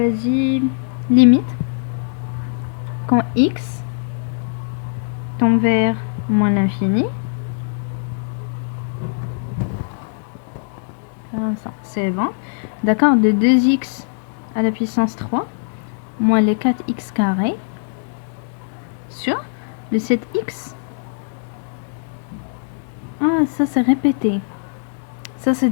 limite quand x tend vers moins l'infini. C'est bon. D'accord, de 2x à la puissance 3 moins les 4x carré sur le 7x. Ah, ça c'est répété. Ça, c'est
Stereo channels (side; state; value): right; silent; digital silence